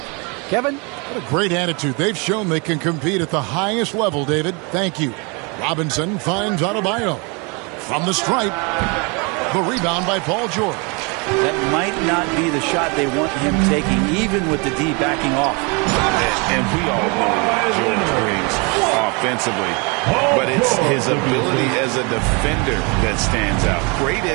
Kevin? What a great attitude. They've shown they can compete at the highest level, David. Thank you. Robinson finds Adebayo. From the stripe. The rebound by Paul George. That might not be the shot they want him taking, even with the D backing off. And we all know what George brings offensively. But it's his ability as a defender that stands out. Great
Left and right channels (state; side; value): quieter; left; 30.9 dB